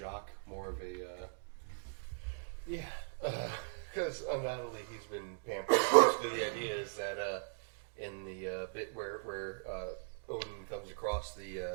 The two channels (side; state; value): left; silent; digital silence